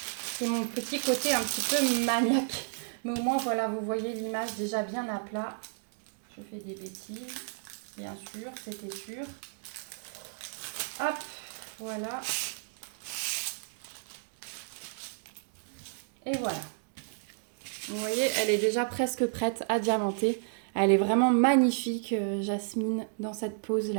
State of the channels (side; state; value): left; silent; digital silence